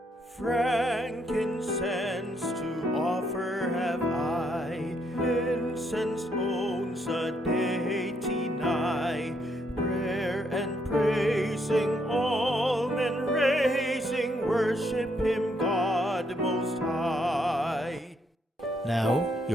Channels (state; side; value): normal; both; correlation 0.74